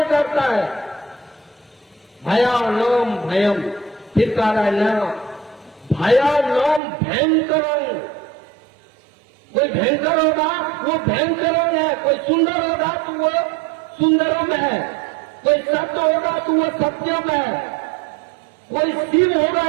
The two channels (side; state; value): left; drops out; at 6.8 s